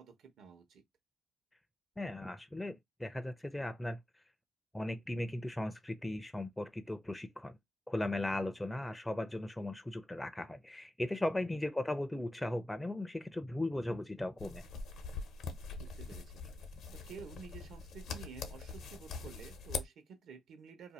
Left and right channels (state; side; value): normal; both; correlation 0.91